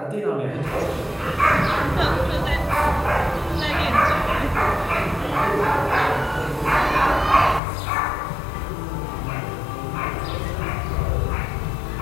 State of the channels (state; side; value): drops out; right; at 7.6 s